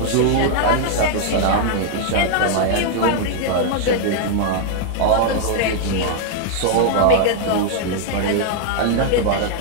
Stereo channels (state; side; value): different; both; correlation -0.01